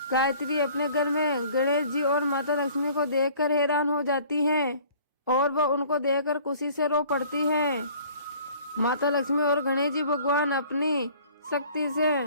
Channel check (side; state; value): both; inverted; correlation -0.52